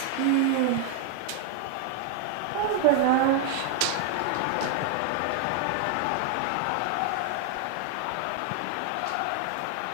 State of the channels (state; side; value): different; both; correlation 0.00